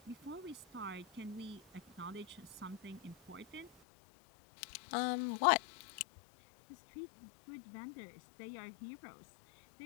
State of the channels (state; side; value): drops out; right; at 3.7 s